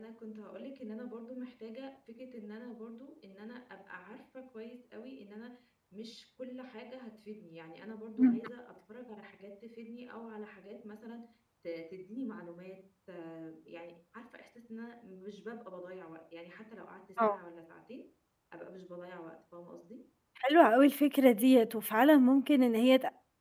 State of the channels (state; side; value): identical; both; correlation 1.00